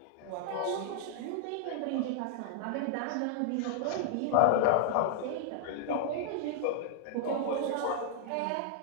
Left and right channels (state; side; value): different; both; correlation -0.01